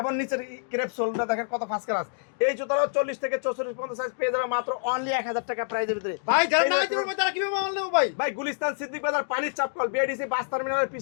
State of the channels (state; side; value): silent; right; digital silence